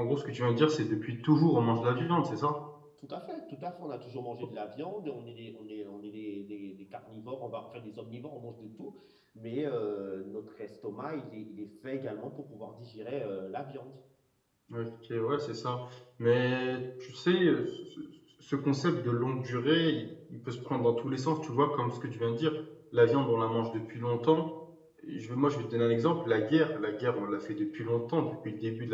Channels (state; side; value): identical; both; correlation 1.00